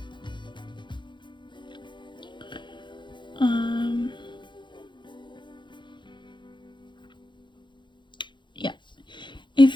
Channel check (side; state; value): right; late; 0.23 ms